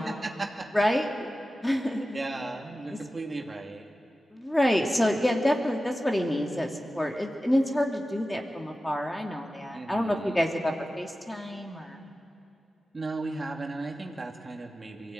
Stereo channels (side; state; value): both; normal; correlation 0.94